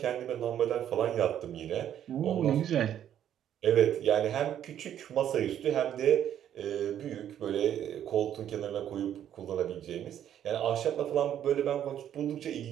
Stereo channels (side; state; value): left; quieter; 10.4 dB